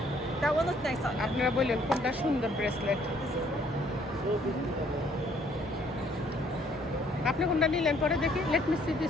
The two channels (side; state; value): both; normal; correlation 0.63